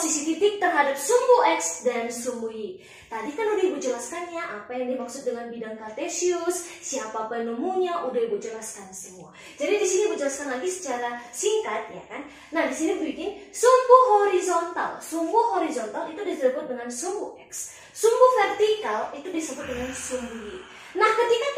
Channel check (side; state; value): both; identical; correlation 1.00